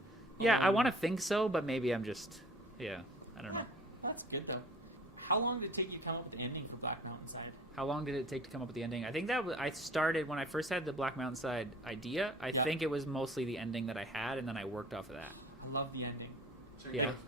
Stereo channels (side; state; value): both; normal; correlation 0.48